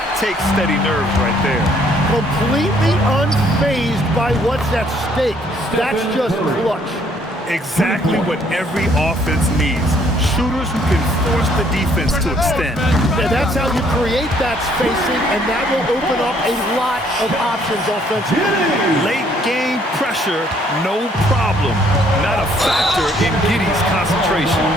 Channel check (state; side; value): normal; both; correlation 0.65